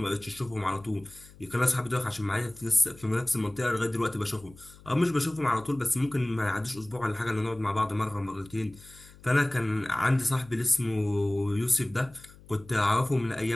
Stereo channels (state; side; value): noise; left; hum, 22 dB below the sound